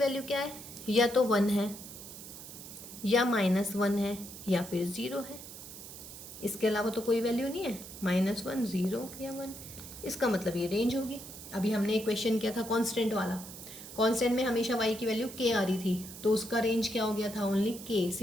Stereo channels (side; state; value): right; noise; hiss, 13 dB below the sound